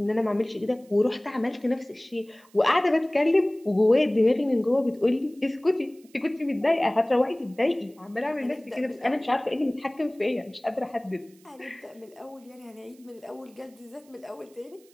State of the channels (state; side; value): noise; right; hiss, 30 dB below the sound